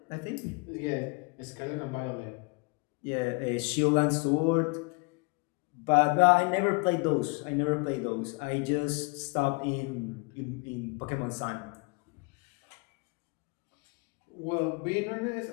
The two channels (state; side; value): quieter; right; 29.8 dB